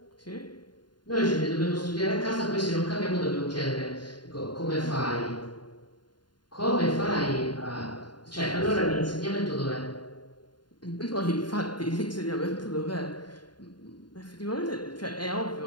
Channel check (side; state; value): right; late; 0.71 ms